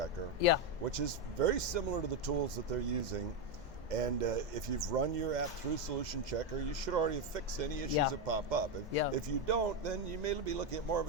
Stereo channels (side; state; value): both; normal; correlation 0.07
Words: which is very similar to the tools that they're using. And if you've run your app through Solution Checker, you should already have fixed any issues that pop up. If you don't, then you may be looking at more of